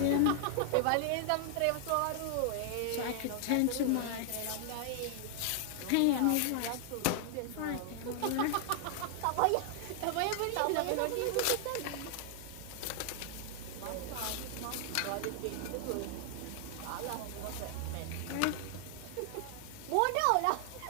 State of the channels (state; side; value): different; both; correlation 0.00